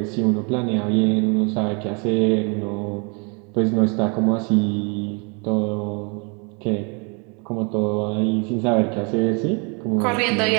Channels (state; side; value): quieter; left; 33.9 dB